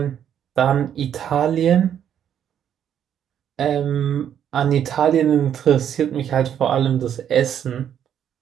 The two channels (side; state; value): left; quieter; 9.4 dB